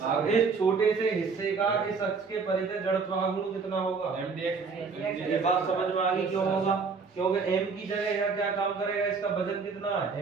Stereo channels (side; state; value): left; quieter; 5.0 dB